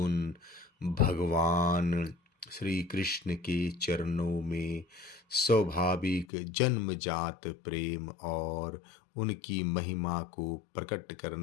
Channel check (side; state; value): right; drops out; at 6.2 s